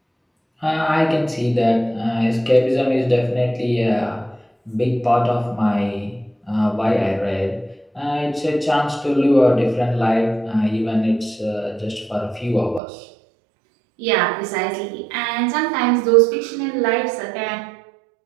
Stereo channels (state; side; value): drops out; left; at 12.8 s